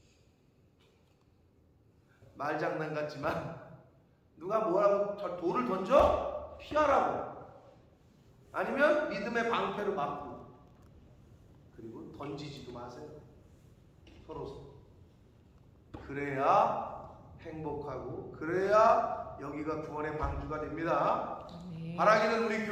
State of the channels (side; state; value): both; identical; correlation 1.00